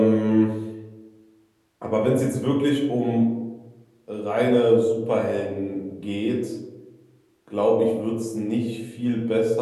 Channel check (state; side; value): identical; both; correlation 1.00